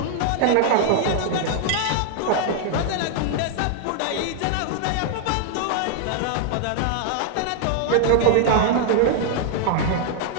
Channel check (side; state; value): both; different; correlation -0.01